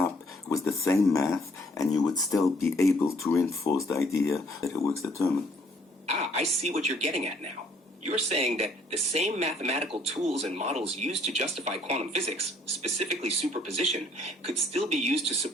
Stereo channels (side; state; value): both; normal; correlation 0.62